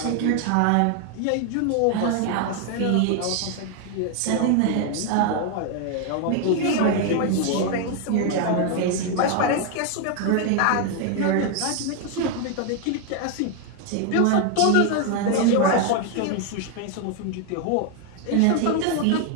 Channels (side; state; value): both; different; correlation 0.00